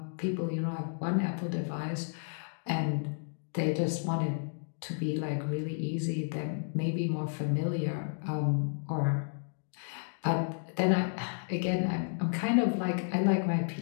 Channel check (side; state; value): right; silent; 56 dB below the other